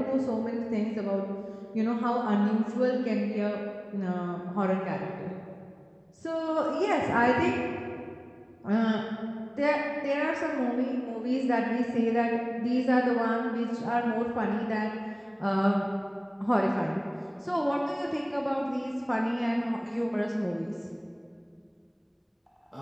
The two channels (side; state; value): both; identical; correlation 1.00